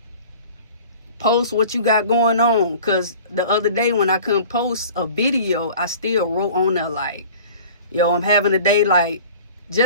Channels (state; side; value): inverted; both; correlation -0.44